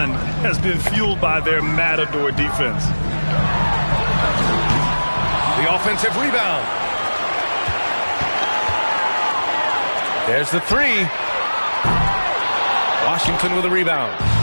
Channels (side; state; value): both; inverted; correlation -1.00